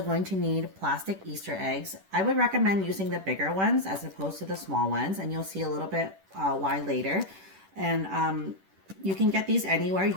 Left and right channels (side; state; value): left; late; 10 ms